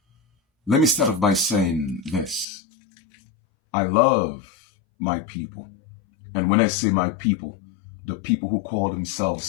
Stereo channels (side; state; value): right; drops out; at 2.5 s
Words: Let me start off by saying this. I love my people. And when I say my people, the people who call themselves